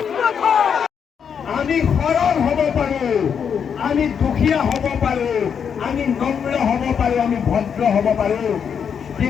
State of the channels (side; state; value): right; quieter; 7.3 dB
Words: আমি সৰল হ'ব পাৰোঁ, আমি দুখীয়া হ'ব পাৰোঁ, আমি নম্ৰ হ'ব পাৰোঁ, আমি ভদ্ৰ হ'ব পাৰোঁ,